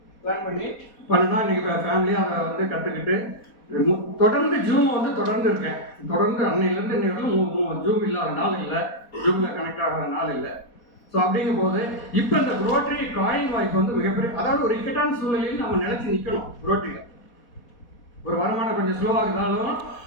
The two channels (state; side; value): late; right; 4.2 ms